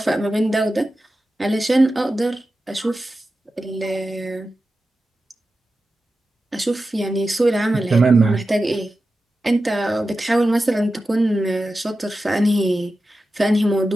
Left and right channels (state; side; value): normal; both; correlation 0.93